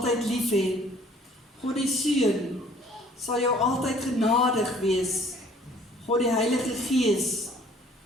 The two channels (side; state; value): both; normal; correlation 0.55